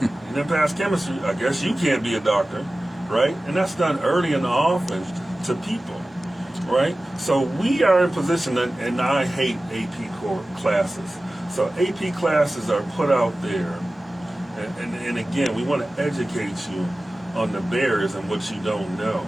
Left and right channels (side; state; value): both; normal; correlation 0.96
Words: you didn't pass chemistry, I guess you can't be a doctor, right? And that's done early and often to people, right? So we are in position, and I hate AP core classes. So AP classes are put out there. And again, we want to educate you on the barriers and what you don't know.